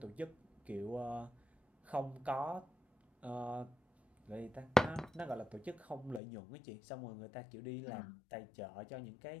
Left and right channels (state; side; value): drops out; right; at 6.2 s